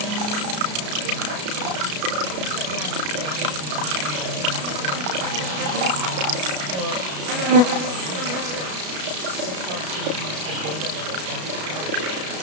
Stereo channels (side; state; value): left; late; 33 ms